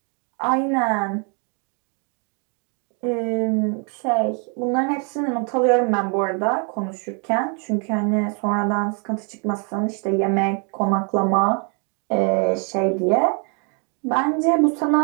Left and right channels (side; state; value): left; quieter; 37.6 dB